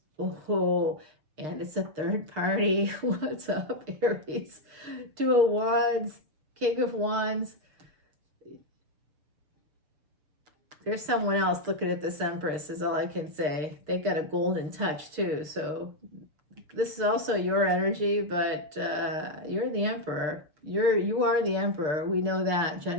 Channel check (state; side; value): late; left; 6.6 ms